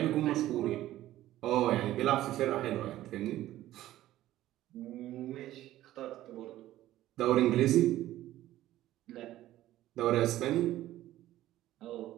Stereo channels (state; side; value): quieter; left; 14.4 dB